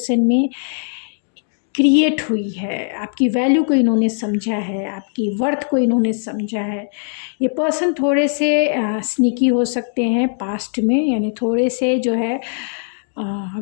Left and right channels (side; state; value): right; silent; digital silence